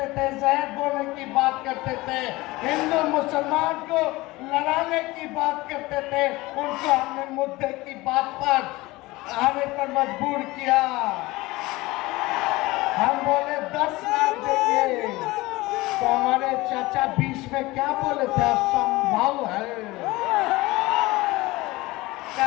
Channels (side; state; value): right; quieter; 20.6 dB